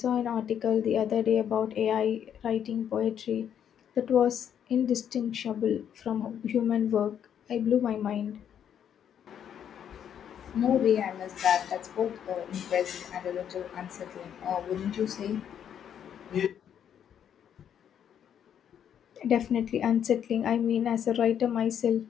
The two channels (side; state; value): right; quieter; 9.0 dB